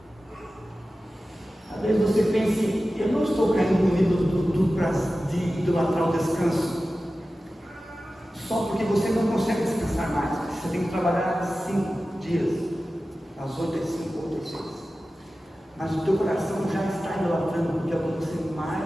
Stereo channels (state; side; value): normal; both; correlation 0.95